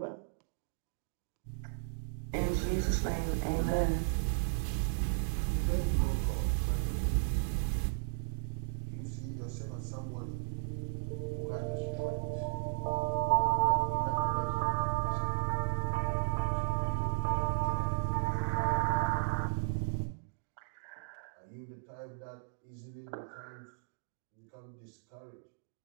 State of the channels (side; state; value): left; silent; digital silence